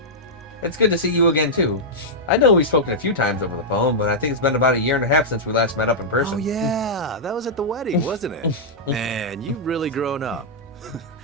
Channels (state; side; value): normal; both; correlation -0.07